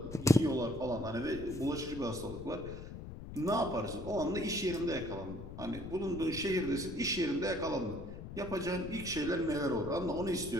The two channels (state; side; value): noise; left; rumble, 10 dB below the sound